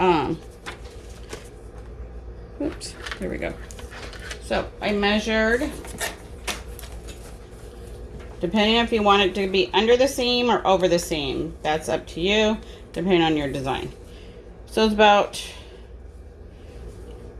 oops, there we go. So I measured, depending if you want it to be under the seam or over the seam. That's up to you, depending on your design. So it's about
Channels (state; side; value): identical; both; correlation 1.00